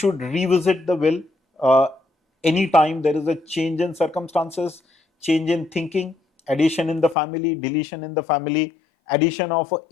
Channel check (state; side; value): drops out; right; at 7.2 s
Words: revisit the will anytime there is a change in circumstances, change in thinking, addition in the family, deletion in the family, addition of an